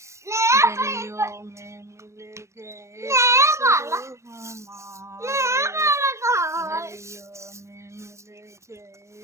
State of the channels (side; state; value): left; late; 0.14 ms